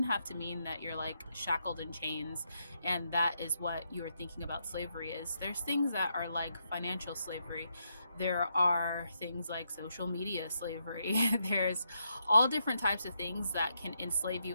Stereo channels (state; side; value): inverted; both; correlation -0.80